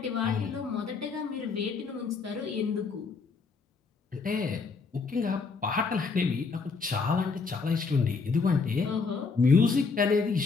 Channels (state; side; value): quieter; right; 4.7 dB